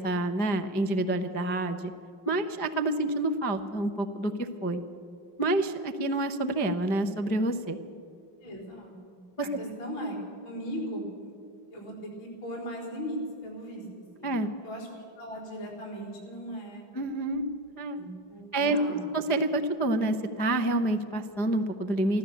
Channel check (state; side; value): late; right; 5.0 ms